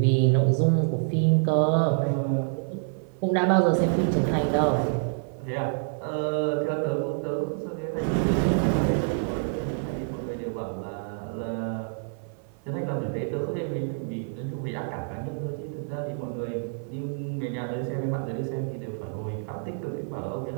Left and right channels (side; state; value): left; silent; 55 dB below the other